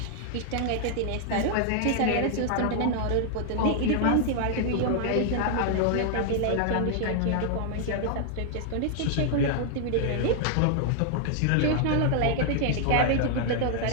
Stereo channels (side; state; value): both; different; correlation 0.00